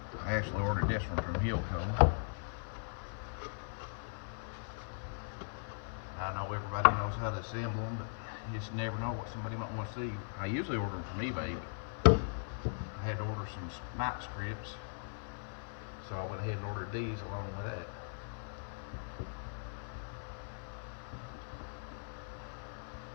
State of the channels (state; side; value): silent; right; 52 dB below the other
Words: I actually ordered this one from Hilco. I know everybody knows how to assemble them, but you just never know what somebody might want to see. I usually order them from eBay, but I had to order some night strips, so I went ahead and ordered these along with that.